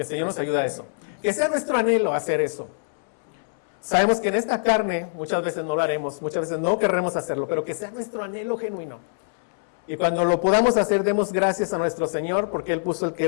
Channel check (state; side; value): silent; right; 62 dB below the other